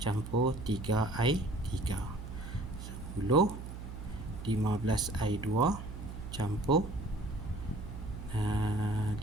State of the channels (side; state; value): right; noise; hum, 9 dB below the sound